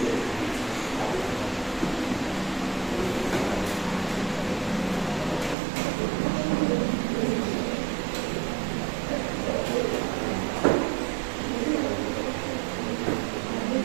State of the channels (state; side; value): drops out; left; at 5.6 s